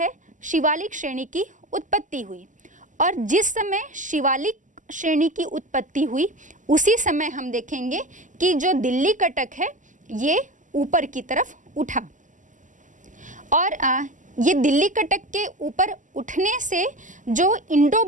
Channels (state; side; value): late; left; 0.37 ms